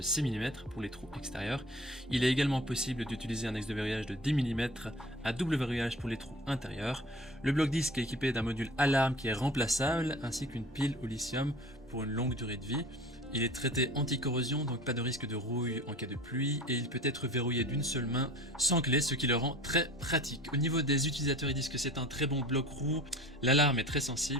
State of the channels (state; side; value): normal; both; correlation 0.42